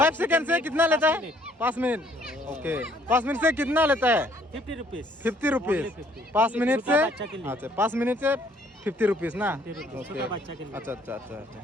सेकेंड से कितना लेता है? 5 मिनट। ओके 5 मिनट से कितना लेता है? 50 रुपीज। 50 रुपीज 5 मिनट से। अच्छा 5 मिनट से 50 रुपीज ना। ओके अच्छा अच्छा अच्छा अच्छा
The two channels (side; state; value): both; normal; correlation 0.63